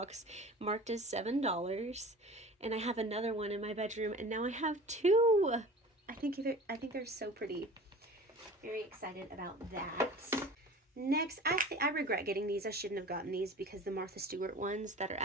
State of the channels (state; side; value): normal; both; correlation 0.40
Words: marked as $7. And I have another one in my bedroom. And now I have two. I think they're so pretty. Very excited about that. Next, I regret getting these. I shouldn't have gotten these because the Martha Stewart ones that are